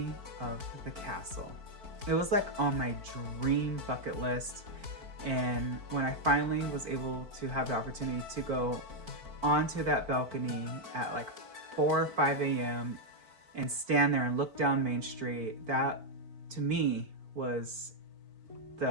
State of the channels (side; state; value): left; late; 4.5 ms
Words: of the castle. It was like on my dream bucket list, and when I finally was able to have the opportunity to go onto that balcony at like 4 or 5 a.m. and stand there and look down Main Street, that to me was